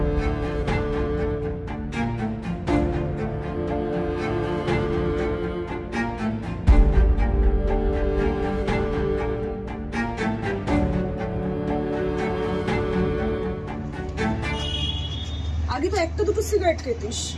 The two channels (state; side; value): identical; both; correlation 1.00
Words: আগে তো একটা দুটো সিগারেট খেতিস,